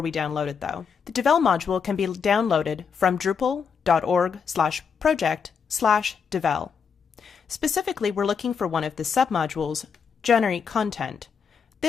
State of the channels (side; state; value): right; quieter; 6.4 dB